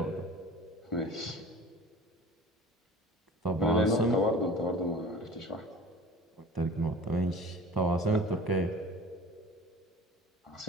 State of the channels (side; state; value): both; normal; correlation 0.41